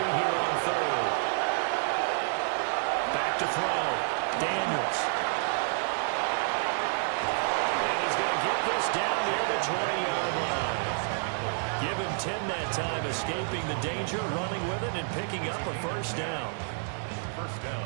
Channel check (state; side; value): silent; left; digital silence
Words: on third. Back to throw. Daniels. And he's going to get this down near the 20-yard line. Give him 10 that time, escaping the danger, running with it, and picking up a first down. First